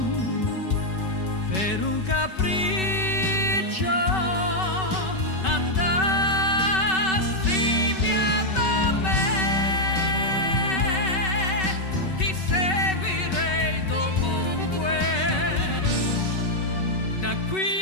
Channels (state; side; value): late; right; 5.3 ms